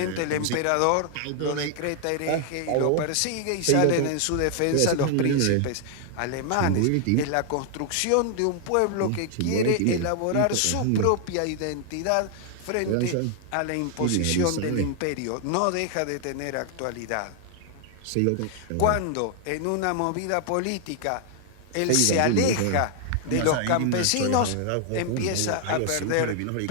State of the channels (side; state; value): both; different; correlation 0.00